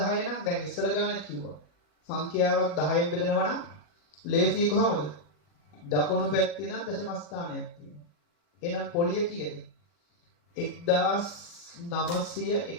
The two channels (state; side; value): late; right; 40 ms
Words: නම් දැන් ඉස්සර ගානෙත් කිව්වා. සංඛ්‍යාවක් 10න් බෙදනවා නම් ලේසි කොහමද? දකුණු පැත්තේ නම් දශම ස්ථානයක් තියෙනවා. එහෙනම් පොලිය කීයද?